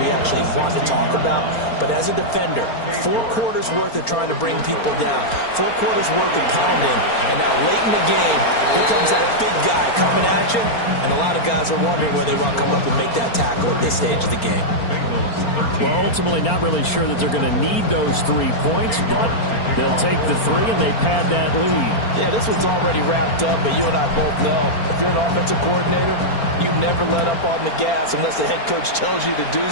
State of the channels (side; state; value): right; late; 4.4 ms